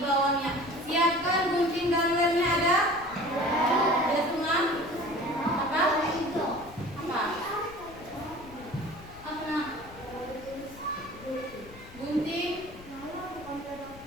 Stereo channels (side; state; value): left; noise; rumble, 19 dB below the sound